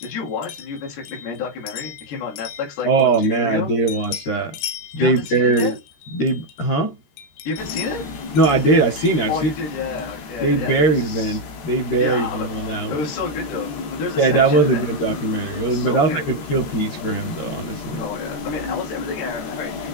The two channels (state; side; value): late; right; 13 ms